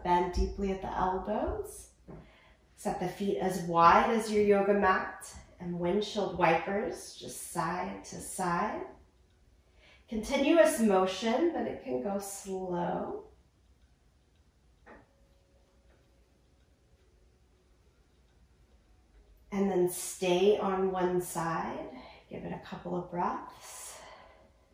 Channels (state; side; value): identical; both; correlation 1.00